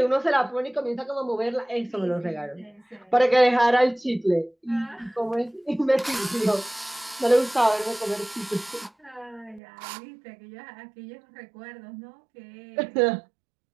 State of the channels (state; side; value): drops out; left; at 9.6 s